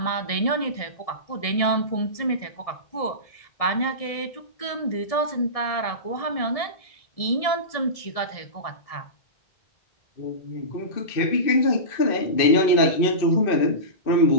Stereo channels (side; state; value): right; late; 1.7 ms